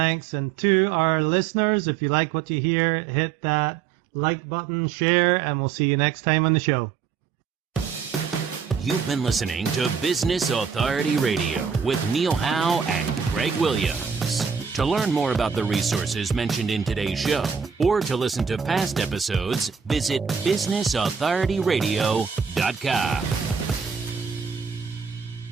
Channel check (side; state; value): left; quieter; 6.6 dB